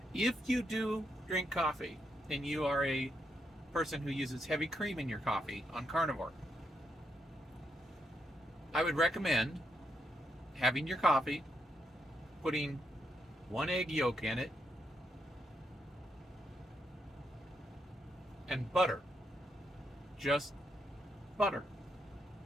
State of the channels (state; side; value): normal; both; correlation 0.80